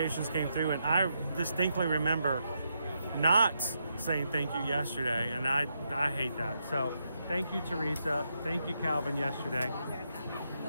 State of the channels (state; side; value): inverted; both; correlation -0.81